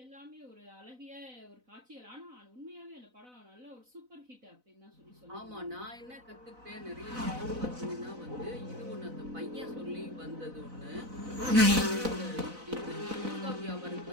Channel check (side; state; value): left; late; 4.0 ms